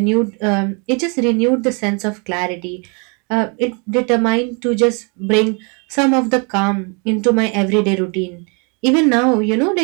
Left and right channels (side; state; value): left; quieter; 34.8 dB